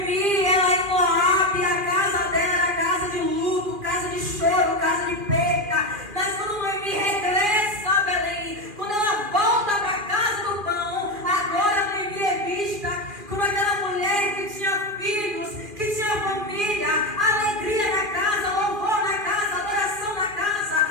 ela em Moab, a casa dela era casa de luto, casa de choro, casa de perca. Mas quando Noemi regressa a Belém, quando ela volta para a casa do pão, agora Noemi é vista como aquela mulher que tinha filhos, que tinha família, alegria na casa, louvor na casa, adoração na casa,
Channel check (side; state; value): left; late; 2.4 ms